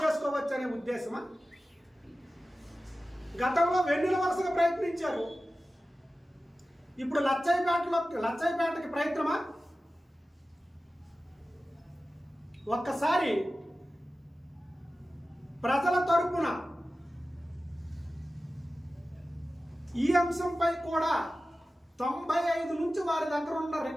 చేసుకోవచ్చు అనే ఉద్దేశమా? గతంలో వెన్నెల వరుసగా ప్రయత్నించారు, ఇప్పుడు లచ్చయ్యపేటకి ప్రయత్నమా? ఒక్కసారి ప్రజల తరపున ఈ అంశంపై కూడా 95 నుంచి వారి దగ్గర ఉన్న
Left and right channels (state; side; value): normal; both; correlation 0.95